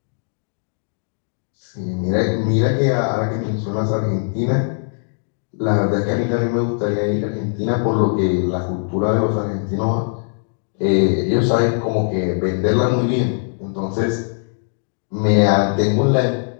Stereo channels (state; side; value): silent; right; digital silence